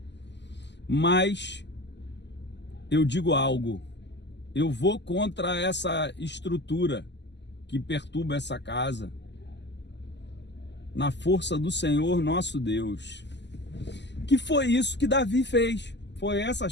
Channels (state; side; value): late; right; 0.51 ms